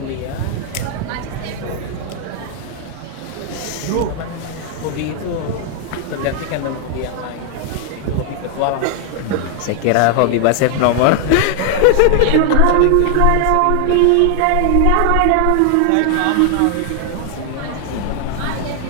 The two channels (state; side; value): different; both; correlation 0.00